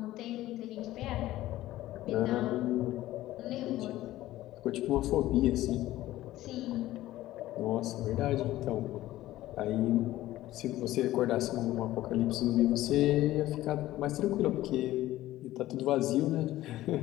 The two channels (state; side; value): quieter; right; 15.5 dB